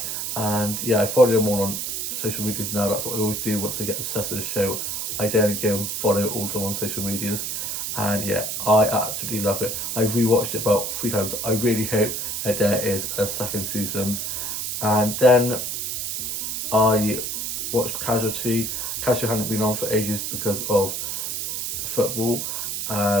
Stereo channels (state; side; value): noise; right; hiss, 3 dB below the sound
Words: and yeah, I follow them all on social medias now. That's what I always do once I get obsessed with a show. I then go and follow all of them on social medias, and yeah, I absolutely love it. I've rewatched it about 3 times. I really hope that there is a second season. And then I watched Casualty. Casualty hadn't been on for ages because of football,